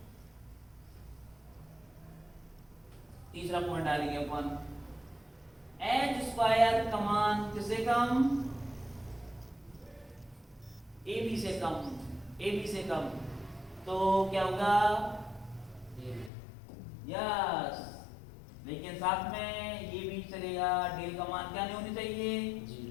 तीसरा पॉइंट डालेंगे अपन, एच स्क्वायर का मान किससे कम? ए बी से कम, ए बी से कम। तो क्या होगा? यस, लेकिन साथ में ये भी चलेगा। डेल का मान क्या नहीं होनी चाहिए?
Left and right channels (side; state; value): right; drops out; at 16.3 s